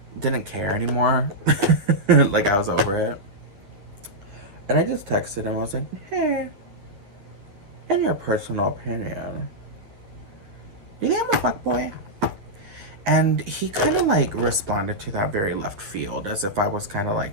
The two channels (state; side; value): late; left; 10 ms